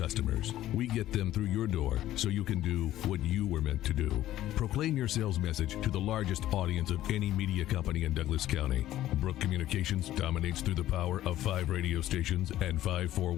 We get them through your door so you can do what you were meant to do. Proclaim your sales message to the largest audience of any media company in Douglas County. Brook Communications dominates through the power of 5 radio stations and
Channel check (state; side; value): quieter; right; 13.8 dB